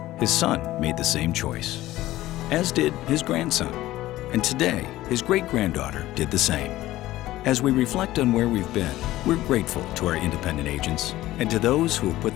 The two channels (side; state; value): right; quieter; 15.9 dB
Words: his son made the same choice, as did his grandson. And today, his great-granddaughter did the same. As we reflect on where we've been, we're grateful to our independent agents and to those who have